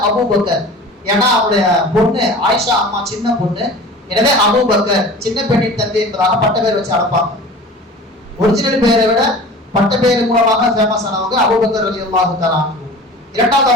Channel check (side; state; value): both; normal; correlation 0.40